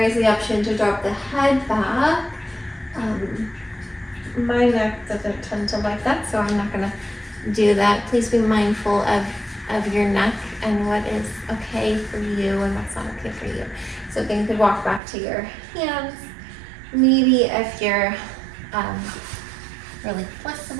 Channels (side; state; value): left; drops out; at 15.0 s